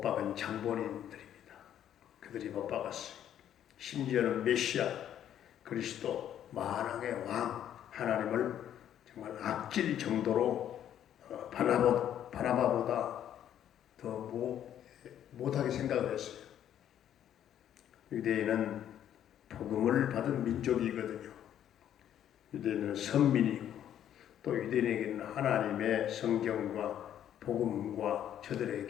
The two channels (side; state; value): right; quieter; 10.5 dB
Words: 박은 장본인들입니다. 그들이 못 박았어요. 심지어는 메시아, 그리스도, 만왕의 왕 하나님을 정말 악질 정도로 바나바보다 더 못하게 생각을 했어요. 유대인은 복음을 받은 민족이거든요. 유대인은 선민이고 또 유대인에게는 하나님의 성경과 복음과